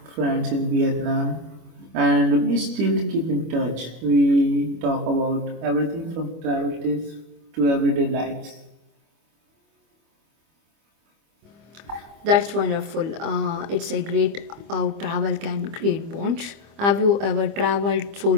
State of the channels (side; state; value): left; late; 25 ms